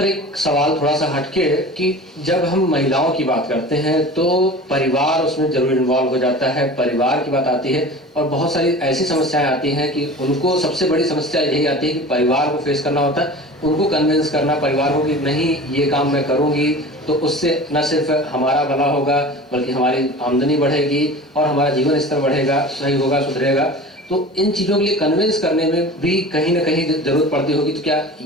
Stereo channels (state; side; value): normal; both; correlation 0.37